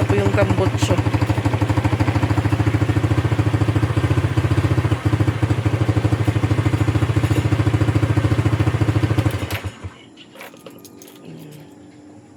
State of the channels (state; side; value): identical; both; correlation 1.00